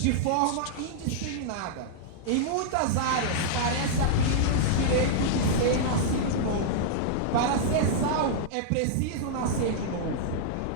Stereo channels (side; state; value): both; different; correlation -0.02